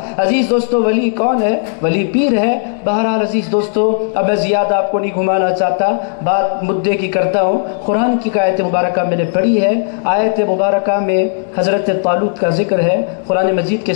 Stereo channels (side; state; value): right; silent; digital silence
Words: عزیز دوستو، ولی کون ہے؟ ولی پیر ہے. بہرحال عزیز دوستو، اب میں زیادہ آپ کو نہیں گھمانا چاہتا، بات مدعے کی کرتا ہوں. قرآن کی آیت مبارکہ میں نے پڑھی ہے. آیت مبارکہ میں حضرت طالوت کا ذکر ہے. قرآن مجید کے